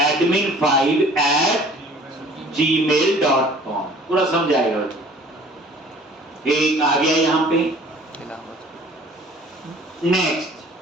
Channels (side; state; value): both; normal; correlation 0.51